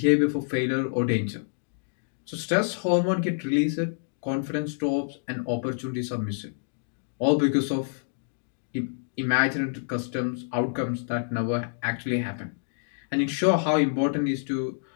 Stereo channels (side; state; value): right; silent; digital silence